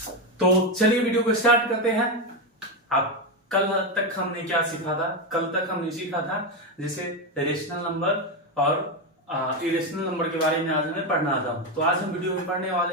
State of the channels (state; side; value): normal; both; correlation 0.10